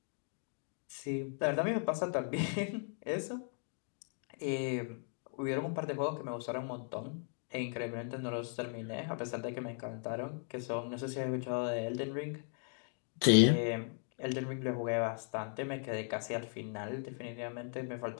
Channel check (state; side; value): silent; right; 53 dB below the other